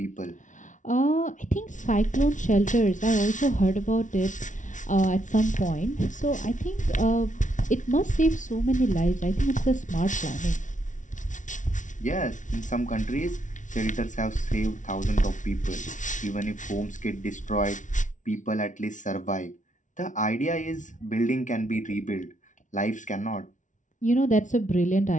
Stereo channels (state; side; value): late; right; 0.37 ms